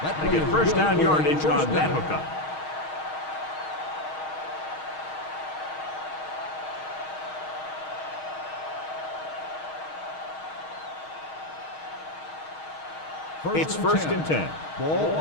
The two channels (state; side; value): late; right; 6.4 ms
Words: They get first down yardage on that hookup. It's first and 10. Ball